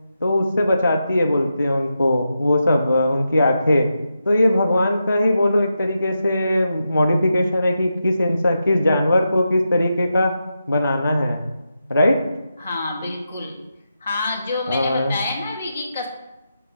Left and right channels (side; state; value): both; inverted; correlation -0.87